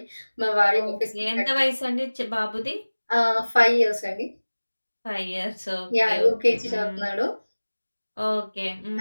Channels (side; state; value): both; inverted; correlation -1.00